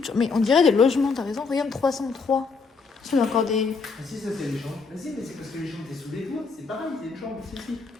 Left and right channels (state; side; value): quieter; right; 4.7 dB